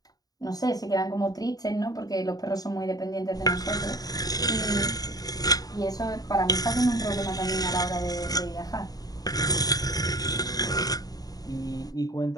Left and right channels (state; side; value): late; right; 0.18 ms